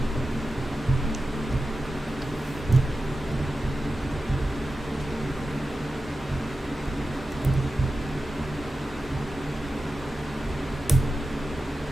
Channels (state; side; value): normal; both; correlation 0.92